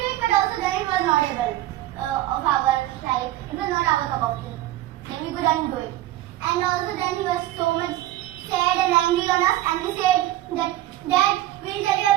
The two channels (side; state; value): left; quieter; 15.1 dB